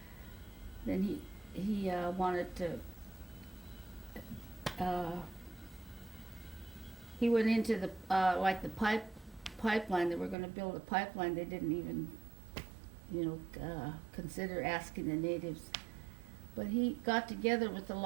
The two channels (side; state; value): left; drops out; at 10.4 s